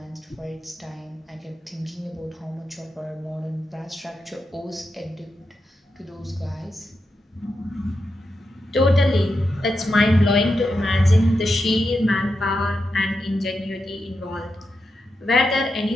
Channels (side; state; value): both; normal; correlation 0.87